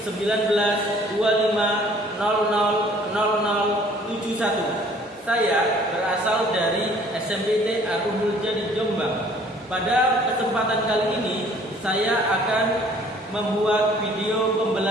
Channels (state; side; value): normal; both; correlation 0.56